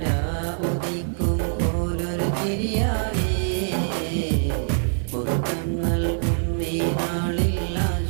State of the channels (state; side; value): silent; left; 63 dB below the other